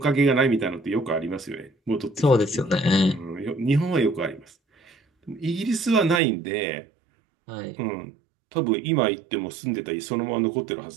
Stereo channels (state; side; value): drops out; left; at 6.2 s